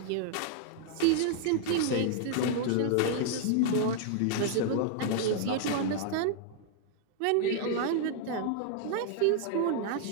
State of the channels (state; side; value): different; both; correlation 0.00